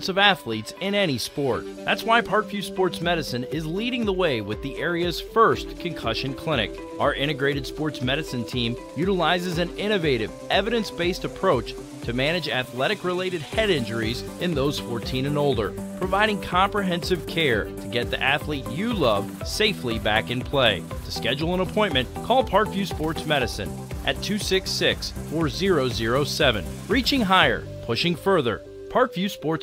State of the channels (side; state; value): both; identical; correlation 1.00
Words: of athletes in any sport. That's why Parkview Sports Medicine is leading the way with the area's first concussion clinic. Our integrated sports medicine team utilizes an innovative, evidence-based approach to manage athletic-related head injuries in those 14 and older, providing comprehensive care to get the athlete you love safely back in play. To schedule an appointment, call Parkview Sports Medicine at 266-4007. Reaching higher, pushing further. Parkview